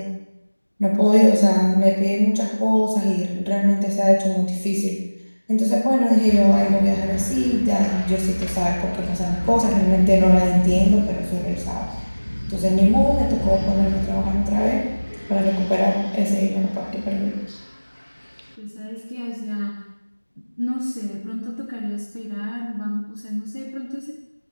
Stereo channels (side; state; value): both; inverted; correlation -1.00